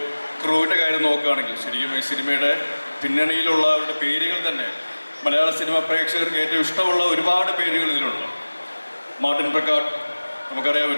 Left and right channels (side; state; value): both; inverted; correlation -1.00